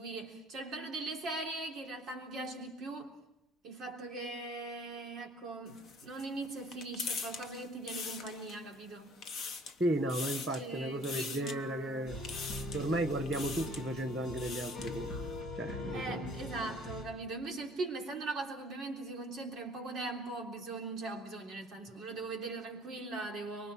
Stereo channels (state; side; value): normal; both; correlation 0.54